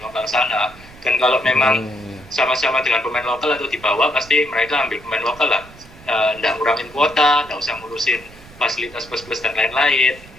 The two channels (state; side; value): noise; right; rumble, 21 dB below the sound